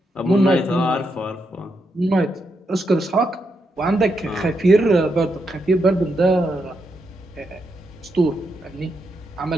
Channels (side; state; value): both; normal; correlation 0.82